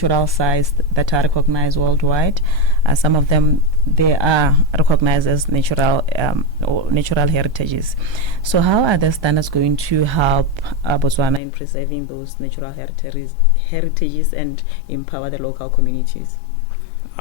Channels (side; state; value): right; drops out; at 11.4 s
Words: sites that are recognized worldwide. Some of them, they are recognized as natural or natural heritages. So how are the standards going to help Botswana in preserving those natural heritages and empower the local communities?